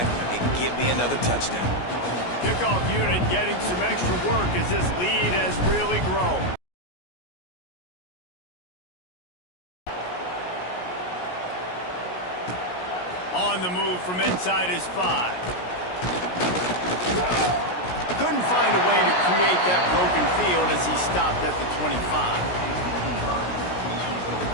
and get me another touchdown. Kickoff unit getting some extra work as this lead has really grown. On the move from inside his 5. Couldn't find a way to create that broken field as he stopped at the 25.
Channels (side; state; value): right; late; 17 ms